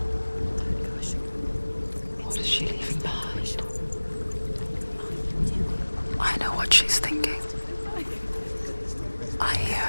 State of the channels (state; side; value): inverted; both; correlation -1.00